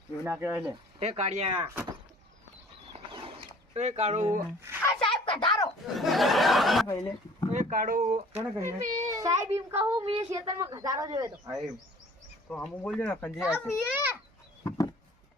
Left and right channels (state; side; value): normal; both; correlation 0.50